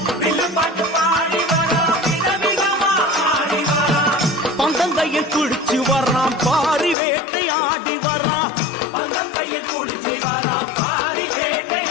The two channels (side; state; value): right; drops out; at 7.0 s